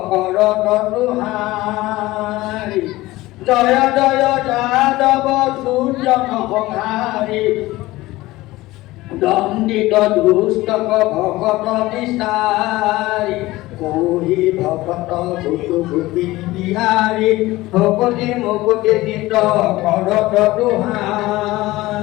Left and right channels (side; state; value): right; quieter; 18.5 dB